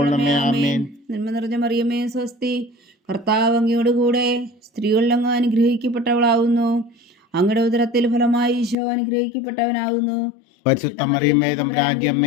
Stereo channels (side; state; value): right; drops out; at 8.8 s